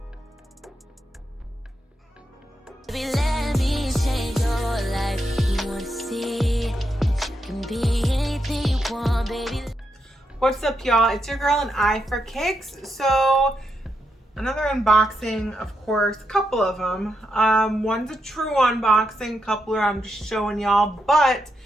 Let me change your life. You want to see that you can be anything you want, baby. What's up, y'all? It's your girl AnEyeIVKicks. So another unboxing, of course, a couple of them. One's a true unboxing, a couple are I'm just showing y'all, but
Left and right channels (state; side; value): normal; both; correlation 0.83